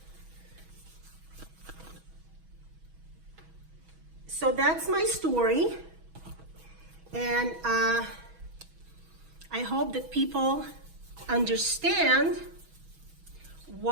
So that's my story, and I hope that people understand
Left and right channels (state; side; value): late; left; 6.2 ms